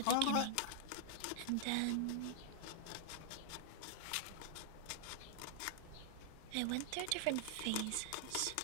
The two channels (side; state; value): both; different; correlation -0.01